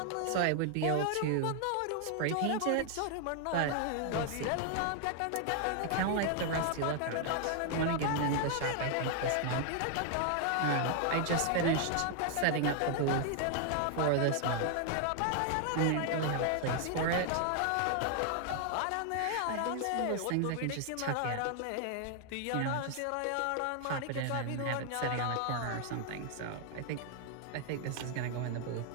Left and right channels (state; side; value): different; both; correlation 0.00